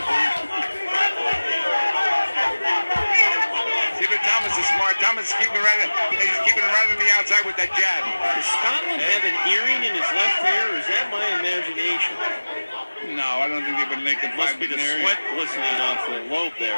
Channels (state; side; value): inverted; both; correlation -1.00